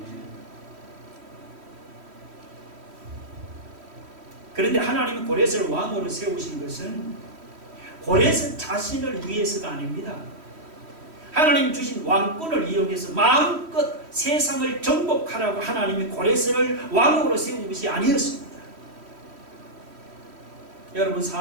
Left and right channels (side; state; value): left; late; 3.1 ms